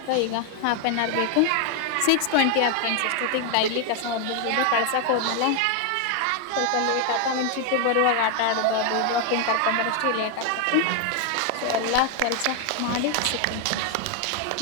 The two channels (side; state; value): both; different; correlation 0.01